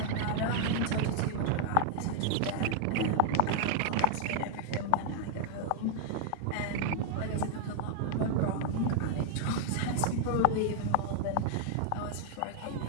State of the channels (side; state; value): both; different; correlation 0.00